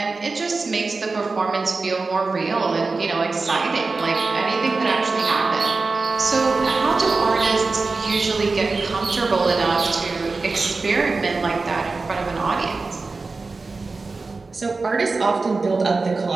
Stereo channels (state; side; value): quieter; left; 3.9 dB